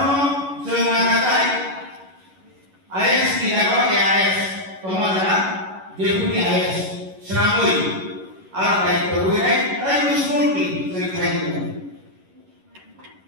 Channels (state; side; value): late; left; 11 ms